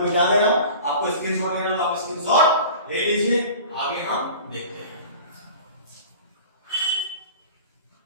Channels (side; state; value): both; inverted; correlation -0.40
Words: मिटा दे रहा हूं, आपको स्क्रीनशॉट लेना तो आप स्क्रीनशॉट ले लीजिए, आगे हम देखते हैं।